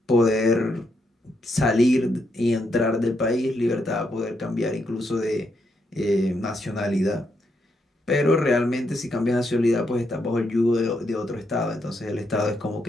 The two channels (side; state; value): both; normal; correlation 0.79